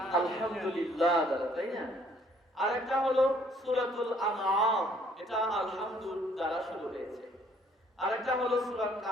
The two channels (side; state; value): both; normal; correlation 0.62